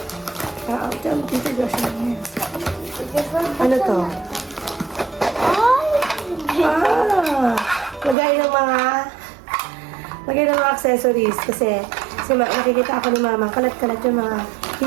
Dito Joshua niya. Ano to? Ay! Lagay ng mga accessories. Kasi makikita ako ni mama. Kalat-kalat yung mga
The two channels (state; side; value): drops out; left; at 8.2 s